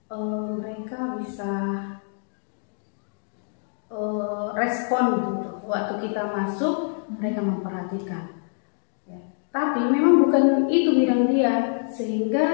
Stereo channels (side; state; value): right; silent; digital silence